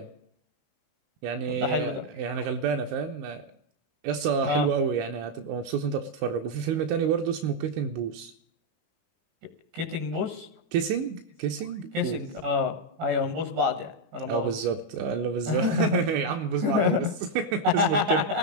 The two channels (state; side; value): late; left; 19 ms